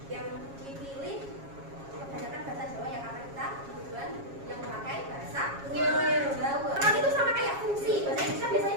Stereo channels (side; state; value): left; late; 7.3 ms